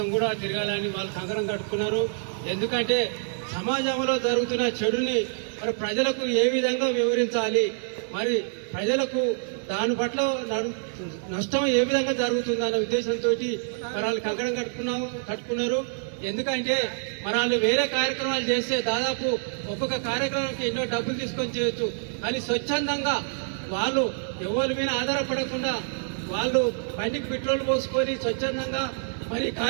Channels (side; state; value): left; silent; 58 dB below the other